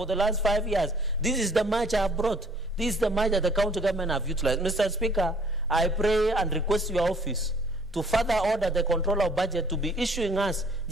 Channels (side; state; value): both; normal; correlation 0.57